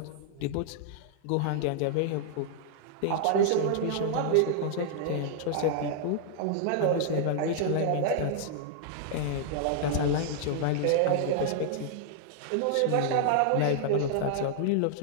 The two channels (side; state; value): both; different; correlation -0.01